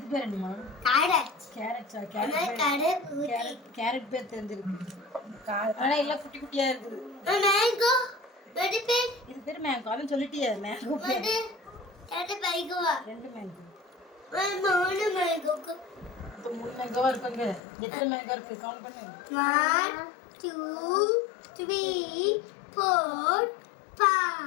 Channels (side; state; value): right; drops out; at 17.6 s